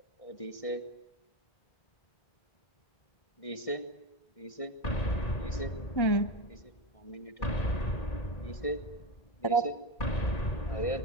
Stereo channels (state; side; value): late; right; 1.6 ms